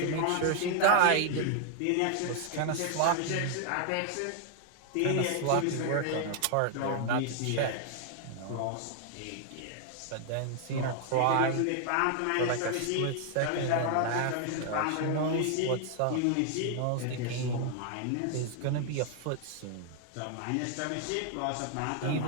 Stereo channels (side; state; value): both; different; correlation 0.00